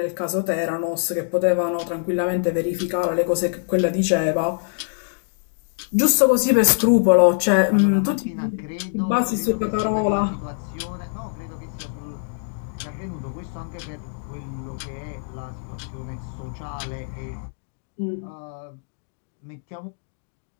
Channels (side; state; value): right; silent; digital silence